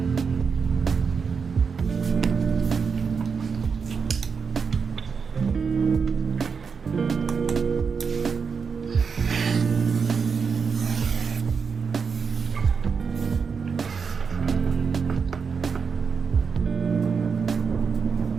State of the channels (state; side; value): quieter; left; 5.7 dB